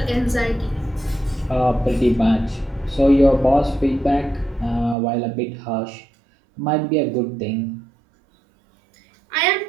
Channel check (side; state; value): left; drops out; at 5.0 s